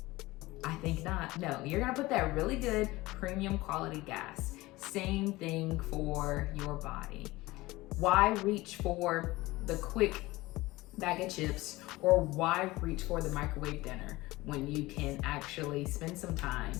I think not. No, you're going to put that really good premium quality gas. Same thing for your body. Why reach for the quick bag of chips, or why reach for the microwave dinner when you can actually spend some time,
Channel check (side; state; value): right; quieter; 19.8 dB